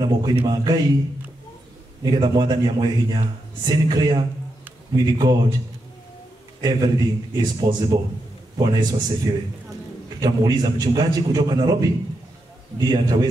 moko-inĩ ma Ngai nĩgetha Mwathani amũhe hinya. Sinclair, with God everything is possible. Bwana Yesu asifiwe. Tutamuuliza mchungaji kutoka Nairobi ndiye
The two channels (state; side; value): normal; both; correlation 0.85